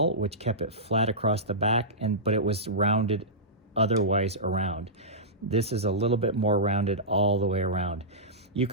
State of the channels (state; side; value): normal; both; correlation -0.16